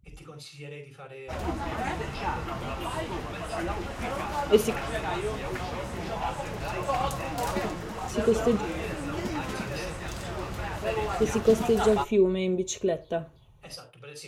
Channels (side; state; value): both; identical; correlation 1.00